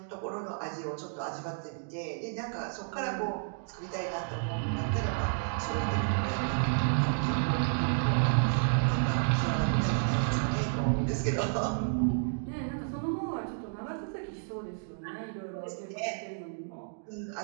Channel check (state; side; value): silent; left; digital silence